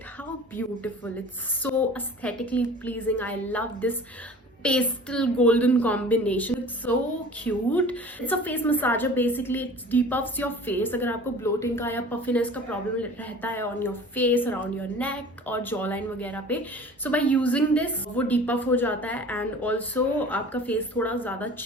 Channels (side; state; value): both; normal; correlation 0.43